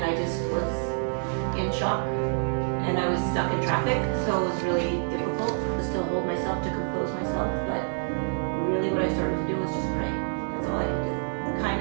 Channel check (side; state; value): left; silent; 60 dB below the other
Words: I just was in shock, and I was stuck in traffic, so it was really difficult to still hold myself, to compose myself, but really what I started to do was just pray. That's all I could do. Kind